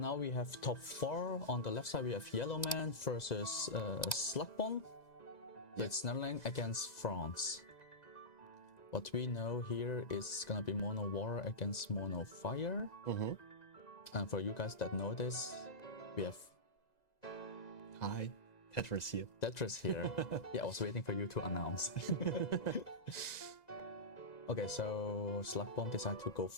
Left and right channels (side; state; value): right; late; 1.9 ms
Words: we have top 4. On the left side we have Yellowman versus Slaksbon. So it's Netherlands against France. What we know here is gonna be mono water against mono fire. And for you guys that know this, we have Hi, Tetris here. Tetris here. Yeah, I was waiting for you to announce. Okay, so Slaksbon decided to go